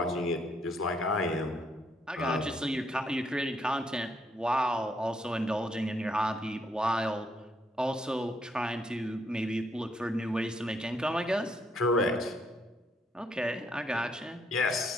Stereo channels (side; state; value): both; normal; correlation 0.73